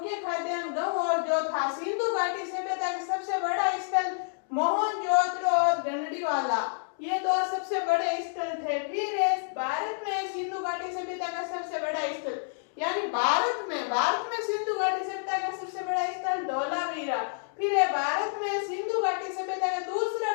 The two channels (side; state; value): right; silent; digital silence